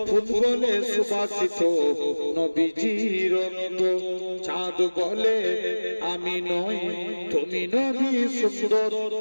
ফুল বলে সুবাসিত নবীজির রক্ত চাঁদ বলে আমি নই তুমি নবী সুন্দর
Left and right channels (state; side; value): inverted; both; correlation -1.00